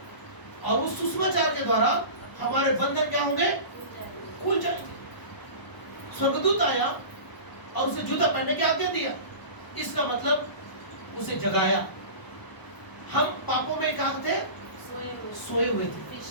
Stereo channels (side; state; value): right; late; 1.0 ms